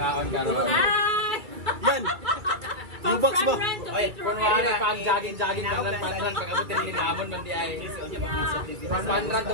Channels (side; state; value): left; late; 2.3 ms